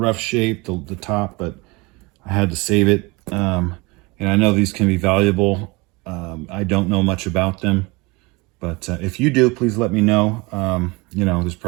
shape, the top, but I had to save it. And I know these can be valuable. I don't know much about them, but if you do, please let me know. You know, there's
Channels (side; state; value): left; quieter; 25.5 dB